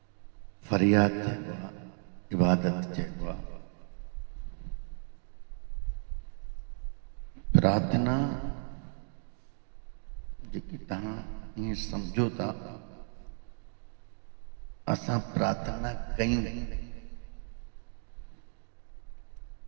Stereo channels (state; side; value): silent; left; 55 dB below the other